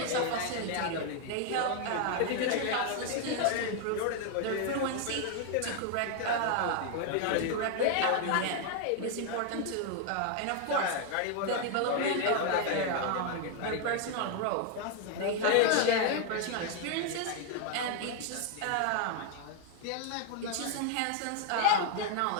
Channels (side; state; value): both; different; correlation 0.00